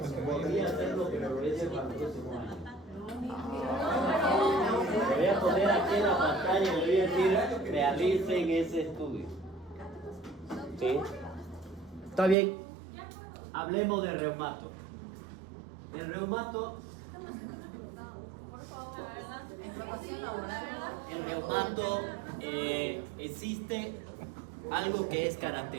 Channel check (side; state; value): left; drops out; at 12.4 s